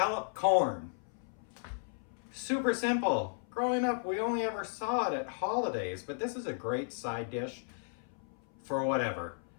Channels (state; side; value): silent; right; 55 dB below the other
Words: corn. Super simple. Growing up, we only ever saw it at holidays, but this is a great side dish for whatever.